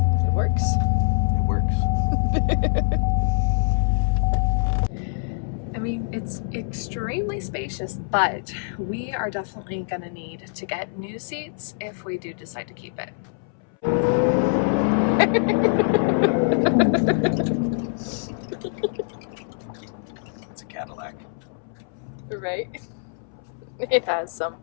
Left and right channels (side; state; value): right; silent; 62 dB below the other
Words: It works. It works. I mean, it's extremely spacious, but we are definitely gonna need to get new seats if we do decide to keep it. It's a Cadillac. Right? It has some